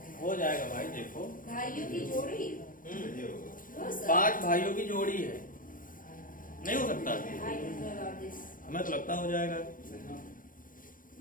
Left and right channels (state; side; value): late; right; 0.40 ms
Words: हो जाएगा भाई, देखो भाइयों की जोड़ी हो सर। 5 भाइयों की जोड़ी है, नहीं हो सकता? I don't know about this. हमें तो लगता हो जाएगा।